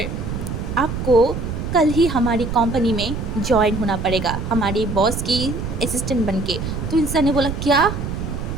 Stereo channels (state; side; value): noise; right; rumble, 5 dB below the sound